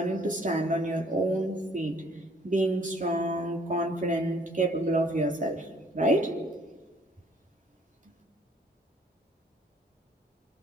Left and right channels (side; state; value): both; normal; correlation 0.59